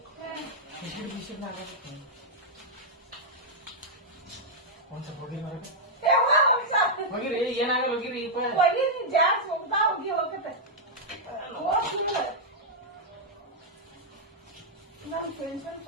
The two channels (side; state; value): both; normal; correlation -0.06